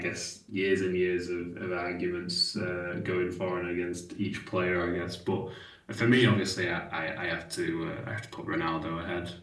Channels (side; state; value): both; identical; correlation 1.00